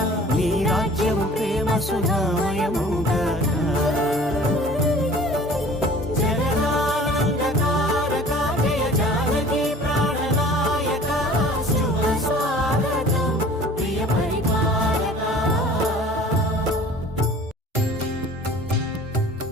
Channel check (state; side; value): normal; both; correlation 0.47